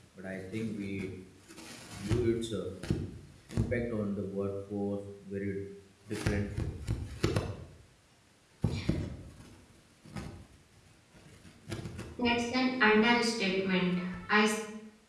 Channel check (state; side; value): identical; both; correlation 1.00